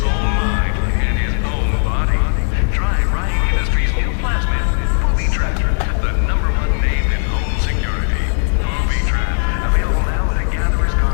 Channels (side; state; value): right; silent; 68 dB below the other